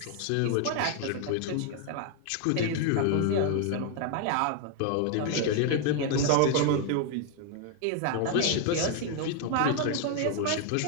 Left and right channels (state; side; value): different; both; correlation 0.01